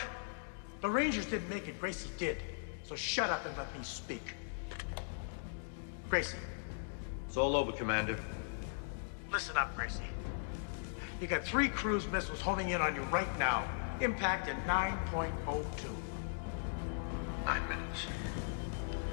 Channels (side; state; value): right; silent; digital silence